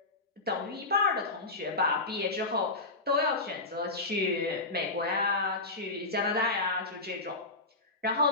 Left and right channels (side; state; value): right; quieter; 3.2 dB